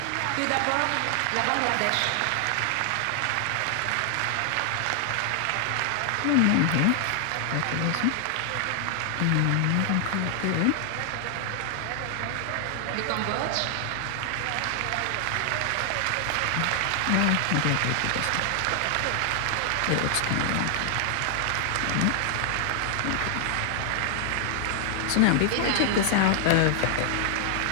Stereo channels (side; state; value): both; different; correlation 0.00